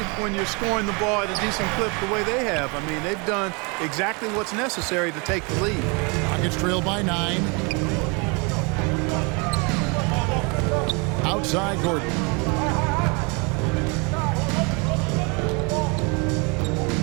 when you're scoring the ball at a decent clip the way they have. I mean, they've done exactly what's necessary to take the lead. Rockets trail by 9. Outside Gordon.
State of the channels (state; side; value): quieter; left; 31.1 dB